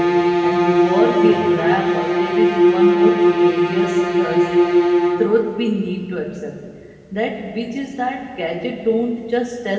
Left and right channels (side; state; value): both; identical; correlation 1.00